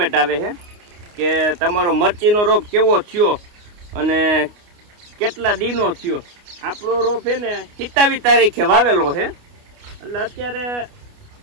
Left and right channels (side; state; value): left; late; 29 ms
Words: આવે છે કે તમારો મરચીનો રોપ કેવો થયો અને કેટલા દીનો થયો। આપણો રોપ છે ને 27 તારીખે વાવેલો છે, એટલે અત્યારે